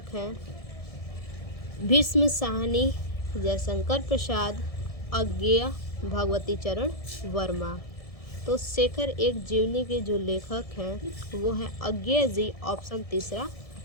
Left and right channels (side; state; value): right; late; 1.7 ms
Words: हैं भीष्म साहनी, जयशंकर प्रसाद, अज्ञेय, भगवती चरण वर्मा। तो शेखर एक जीवनी के जो लेखक हैं वो हैं अज्ञेय जी। ऑप्शन तीसरा